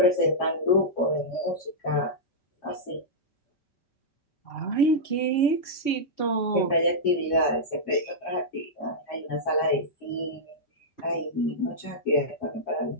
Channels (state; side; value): late; right; 5.2 ms